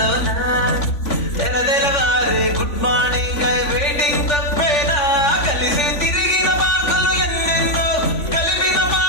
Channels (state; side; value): late; right; 3.5 ms